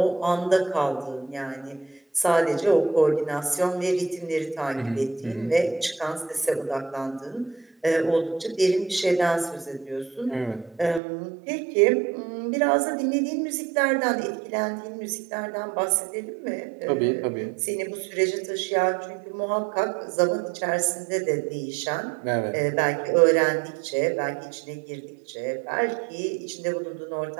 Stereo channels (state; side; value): drops out; left; at 11.0 s